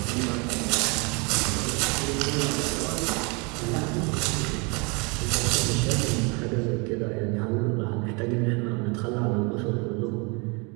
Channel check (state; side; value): quieter; left; 30.7 dB